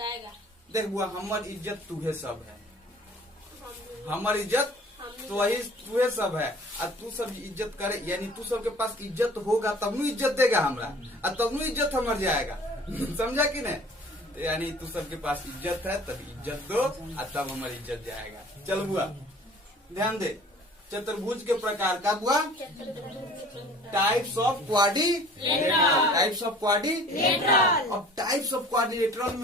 देख बुआ, हमार इज्जत तुहे सब है, हमार इज्जत तो वही तुहे सब है। और तू सब इज्जत करे, यानी तू सबके पास इज्जत होगा तब नु इज्जत देगा हमरा, और तब नु इज्जत हमार जाएगा। समझा कि नहीं? यानी तू सबके पास इज्जत है तब इज्जत दो, और तब हमारी इज्जत जाएगा। चल बुआ ध्यान दे, चतुर्भुज के प्रकार का बुआ, types of quadrilateral, types of quadrilateral. अब टाइप्स ऑफ क्वाड्रिलेटरल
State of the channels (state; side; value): normal; both; correlation 0.48